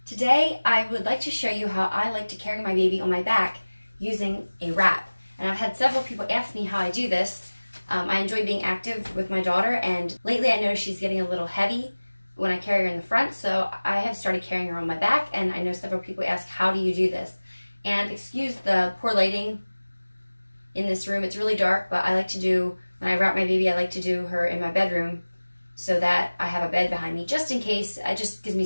Today I would like to show you how I like to carry my baby on my back using a wrap. And I've had several people ask me how I do this. I enjoy being active with my daughter, and lately I noticed she's getting a little heavy when I carry her in the front, so I have started carrying her on my back, and I know several people ask, how do you do this? And excuse the poor lighting in this room, it's really dark, but I like to do, when I wrap my baby, I like to do her in my bedroom so that I have a bed behind me, just in case. It just gives me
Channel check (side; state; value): both; inverted; correlation -1.00